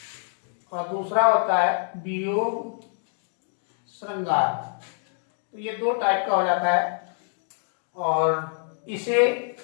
और दूसरा होता है वियोग श्रृंगार। तो ये 2 टाइप का हो जाता है और इसे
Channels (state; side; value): silent; right; 61 dB below the other